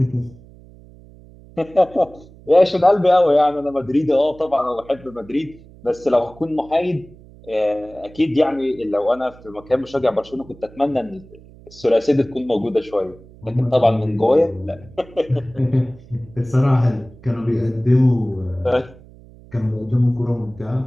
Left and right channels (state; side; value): noise; right; hum, 22 dB below the sound